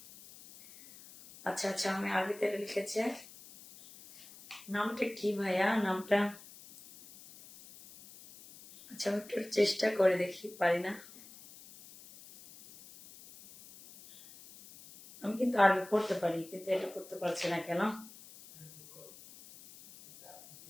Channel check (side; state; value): left; noise; hiss, 19 dB below the sound